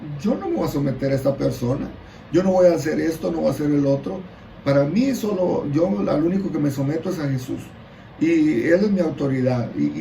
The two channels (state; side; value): identical; both; correlation 1.00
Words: Yo no me voy a someter a esta persona. Yo no voy a hacer esto, no voy a hacer el otro. Para mí yo al único que me someto es a Jesús. Y Él es mi autoridad.